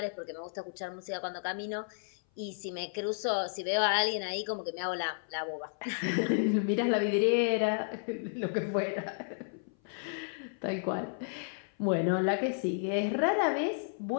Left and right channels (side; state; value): right; silent; 56 dB below the other